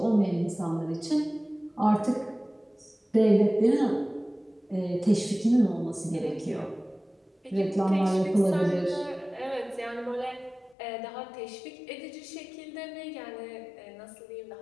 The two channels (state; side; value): drops out; right; at 10.8 s